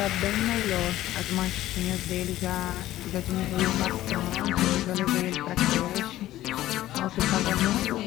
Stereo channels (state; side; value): quieter; right; 14.7 dB